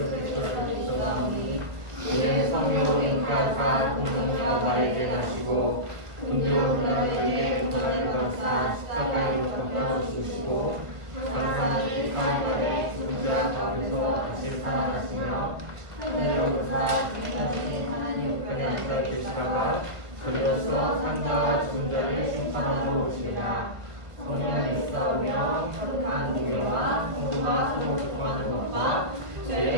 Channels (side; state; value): left; late; 1.2 ms